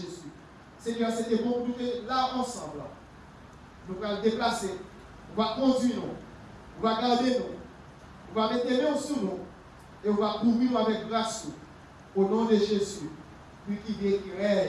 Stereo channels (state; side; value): identical; both; correlation 1.00